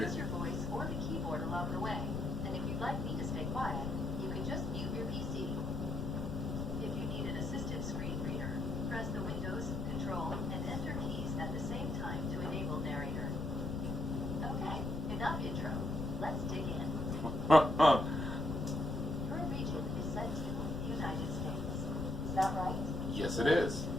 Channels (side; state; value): left; noise; rumble, 5 dB below the sound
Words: your voice or the keyboard along the way. And if you'd like me to stay quiet, you can just mute your PC. If you need an assisted screen reader, press the Windows, Control, and Enter keys at the same time to enable narrator. Okay, enough intro. Let's dig in. Your region is set to United States. Is that right? Yes, it is.